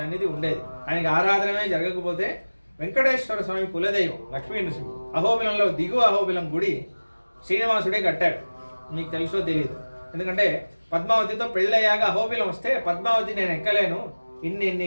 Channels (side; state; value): both; inverted; correlation -1.00